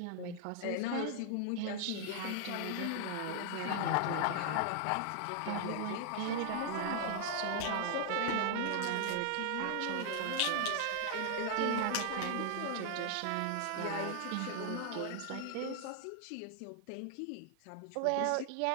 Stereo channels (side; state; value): both; different; correlation 0.00